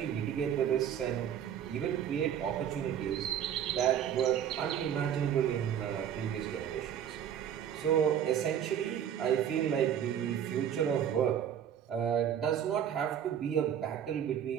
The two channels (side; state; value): left; quieter; 9.3 dB